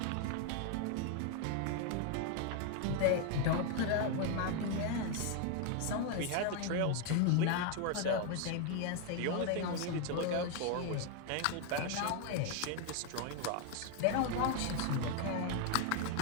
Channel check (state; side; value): different; both; correlation 0.01